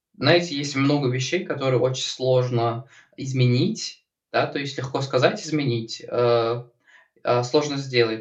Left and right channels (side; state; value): both; identical; correlation 1.00